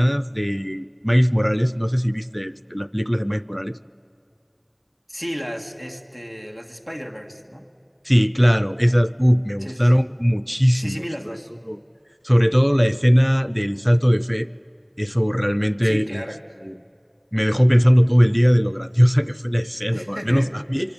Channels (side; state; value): both; identical; correlation 1.00